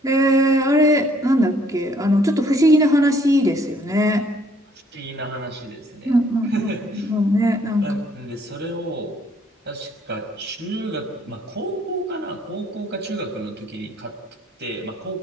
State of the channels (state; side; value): normal; both; correlation 0.63